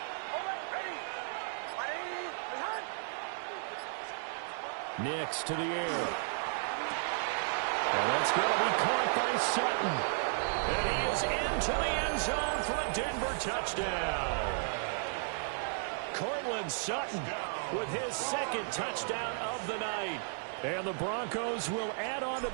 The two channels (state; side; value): silent; left; 55 dB below the other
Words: Nix to the air. And that's going to be caught by Sutton. And he is into the end zone for a Denver touchdown. Courtland Sutton with his 2nd touchdown of the night. And the Broncos will add on to